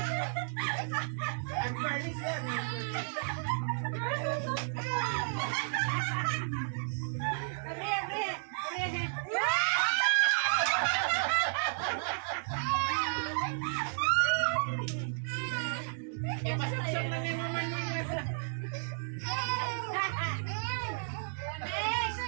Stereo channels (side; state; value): left; silent; digital silence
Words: Unfurnished yan. Ipasaksak na ni Mama Nuna.